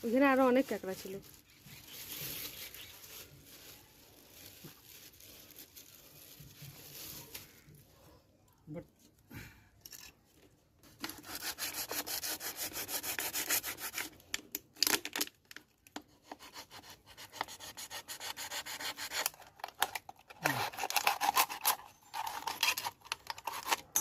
ওখানে আরো অনেক কাঁকড়া ছিল। বাট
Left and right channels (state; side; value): identical; both; correlation 1.00